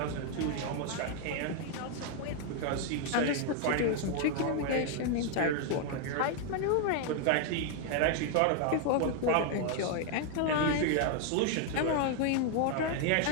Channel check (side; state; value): both; different; correlation 0.00